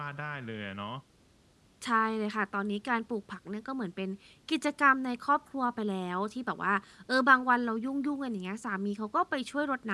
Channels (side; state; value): both; identical; correlation 1.00